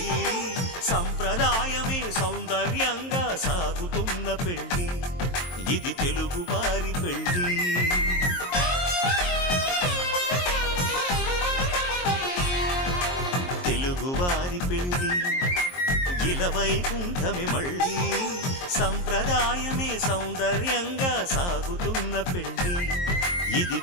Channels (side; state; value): right; late; 22 ms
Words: సంప్రదాయమే సౌందర్యంగా సాగుతున్న పెళ్ళి ఇది తెలుగువారి పెళ్ళి తెలుగువారి పెళ్ళి ఇలవైకుంఠమే మళ్ళీ సంప్రదాయమే సౌందర్యంగా సాగుతున్న పెళ్ళి ఇది